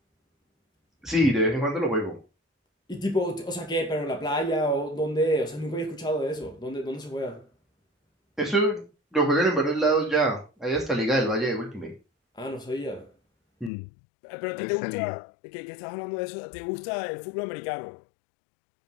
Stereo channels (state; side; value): drops out; right; at 13.7 s